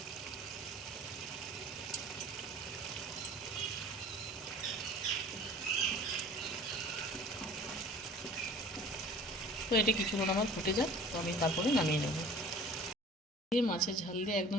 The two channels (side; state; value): both; normal; correlation 0.45